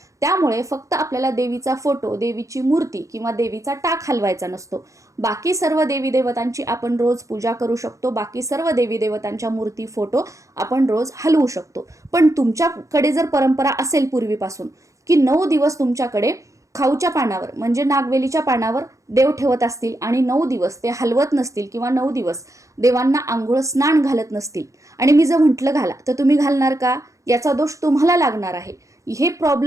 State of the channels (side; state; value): left; late; 0.15 ms